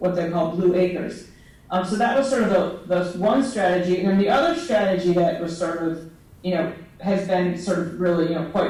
they call blue acres. So that was sort of the one strategy. And then the other strategy that was sort of, has been sort of really,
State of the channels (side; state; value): both; identical; correlation 1.00